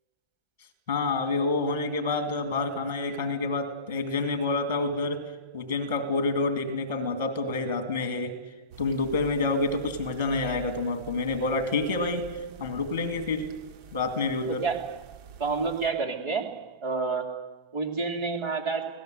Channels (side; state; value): left; late; 1.3 ms